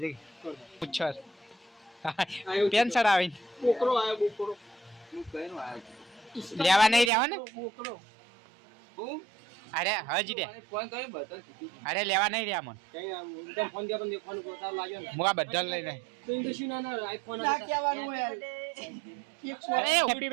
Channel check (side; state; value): left; drops out; at 7.1 s